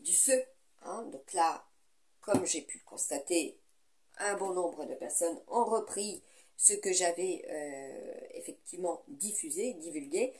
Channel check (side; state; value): both; identical; correlation 1.00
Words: du feu. Hein. Donc là, comme j'ai pu le constater, un bon nombre de personnes ont repris ce que j'avais effectivement diffusé, divulgué,